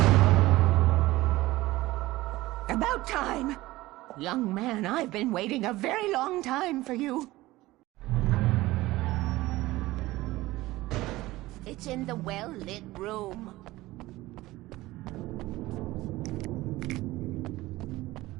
About time! Young man, I've been waiting a very long time for you. It's in the well-lit room.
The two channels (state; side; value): quieter; left; 18.3 dB